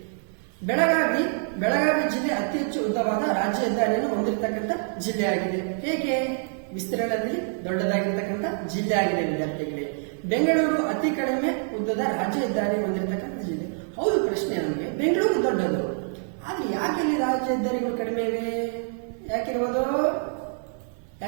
ಬೆಳಗಾವಿ ಜಿಲ್ಲೆ ಅತಿ ಹೆಚ್ಚು ಉದ್ದವಾದ ರಾಜ್ಯ ಹೆದ್ದಾರಿಯನ್ನು ಹೊಂದಿರತಕ್ಕಂಥ ಜಿಲ್ಲೆಯಾಗಿದೆ. ಹೇಗೆ? ವಿಸ್ತೀರ್ಣದಲ್ಲಿ ದೊಡ್ಡದಾಗಿರ್ತಕ್ಕಂಥ ಜಿಲ್ಲೆ ಆಗಿದೆ ವಿದ್ಯಾರ್ಥಿಗಳೇ. ಬೆಂಗಳೂರು ಅತಿ ಕಡಿಮೆ ಉದ್ದದ ರಾಜ್ಯ ಹೆದ್ದಾರಿ ಹೊಂದಿರತಕ್ಕಂಥ ಜಿಲ್ಲೆ. ಹೌದು, ಪ್ರಶ್ನೆ ನಮಗೆ ಬೆಂಗಳೂರು ದೊಡ್ಡದು, ಆದ್ರೆ ಯಾಕೆ ಇಲ್ಲಿ ರಾಜ್ಯ ಹೆದ್ದಾರಿಗಳು ಕಡಿಮೆ ಇವೆ? ಯಾಕಿರ್ಬೋದು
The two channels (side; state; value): left; silent; 57 dB below the other